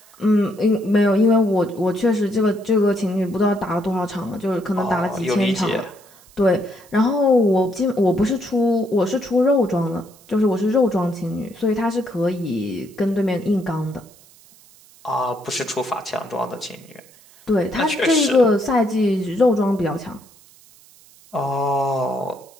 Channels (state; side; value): noise; right; hiss, 26 dB below the sound